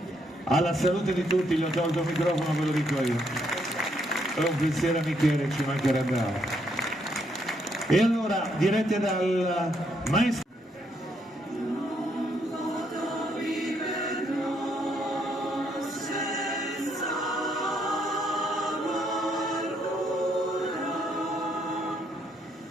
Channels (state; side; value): normal; both; correlation 0.73